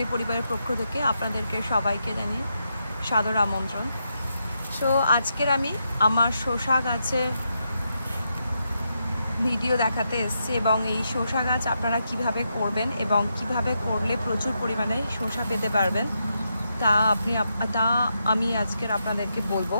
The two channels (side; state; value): both; inverted; correlation -0.83